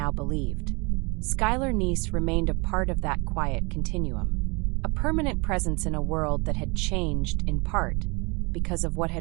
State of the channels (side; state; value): left; quieter; 28.7 dB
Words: believed. Skylar Neese remained a part of that quiet continuum, a permanent presence in a world that had changed in part because of what